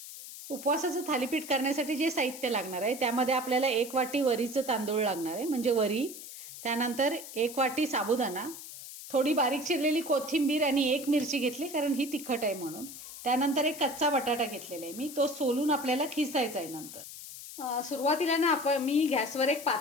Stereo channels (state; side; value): noise; left; hiss, 12 dB below the sound